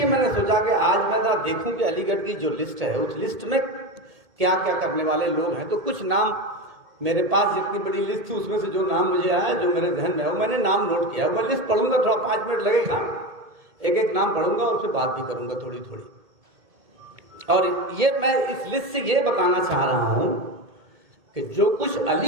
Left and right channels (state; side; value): late; left; 2.2 ms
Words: मैंने सोचा कि आज मैं ना देखूं कि अलीगढ़ की जो लिस्ट है उस लिस्ट में क्या क्या करने वाले लोग हैं। तो कुछ नाम मेरे पास, जितनी बड़ी लिस्ट थी उसमें से जो नाम मुझे आया, जो मेरे ध्यान में है, वो मैंने नाम नोट किया। मैं लिस्ट पढ़ूंगा, थोड़ा 5 मिनट लगेगा, एक एक नाम पढ़ूंगा और फिर बात भी करूंगा थोड़ी थोड़ी। और ये मैं इस लिस्ट से ये बताना चाह रहा हूं कि जो कुछ